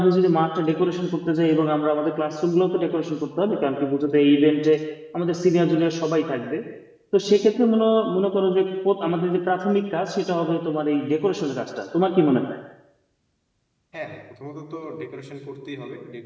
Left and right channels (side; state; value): both; identical; correlation 1.00